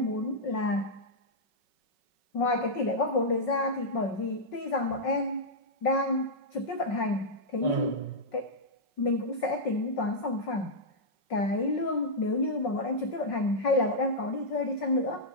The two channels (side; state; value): right; late; 5.4 ms